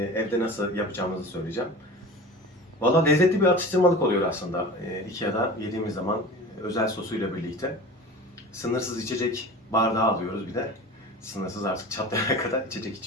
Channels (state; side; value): normal; both; correlation 0.35